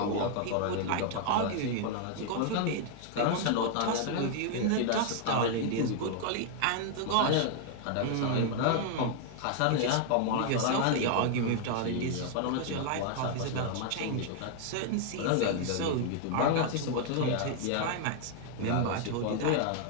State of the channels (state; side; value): different; both; correlation 0.00